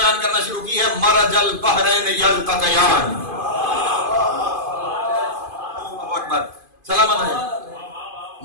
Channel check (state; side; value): late; left; 2.5 ms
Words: کرنا شروع کی ہے مرج البحرین یلتقیان. سلامت ہے.